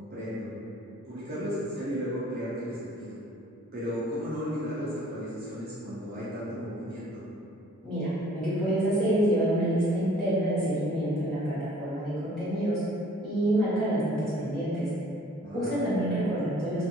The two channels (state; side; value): normal; both; correlation 0.55